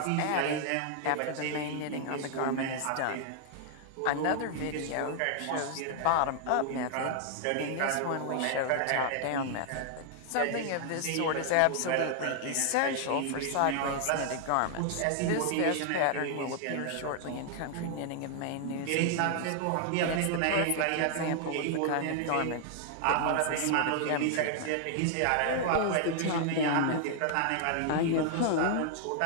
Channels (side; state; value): both; different; correlation 0.00